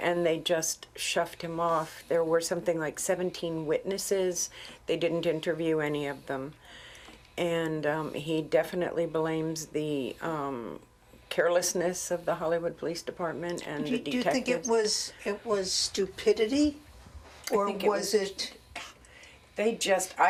they just shoved him off. There were something like 17 witnesses. They didn't interview any of them. And he definitely blames the carelessness of the Hollywood Police Department and the Do you detectives. think it was stupidity? Or think it was was- it...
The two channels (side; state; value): both; identical; correlation 1.00